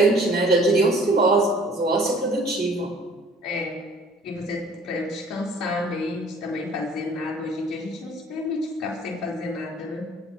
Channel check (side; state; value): both; normal; correlation 0.53